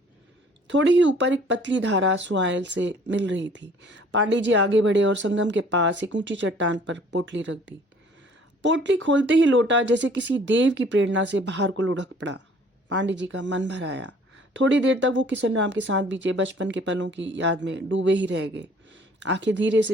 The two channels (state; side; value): normal; both; correlation 0.55